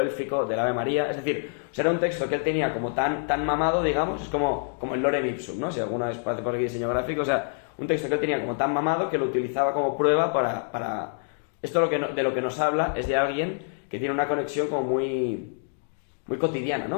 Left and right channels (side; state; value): right; silent; 61 dB below the other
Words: del Ave María. Es decir, o sea, era un texto que él tenía como tan mamado, digamos, es como el Lorem Ipsum, ¿no? Si alguna vez hace por aquí diseño gráfico, o sea, un texto que él tenía como tan mamado que lo utilizaba como prueba para... Esto de lo que nos habla es de alguien que tiene una conexión como muy cotidiana,